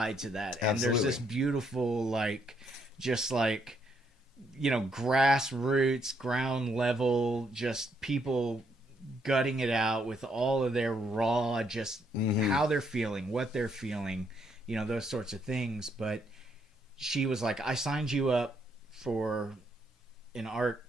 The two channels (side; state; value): both; normal; correlation 0.73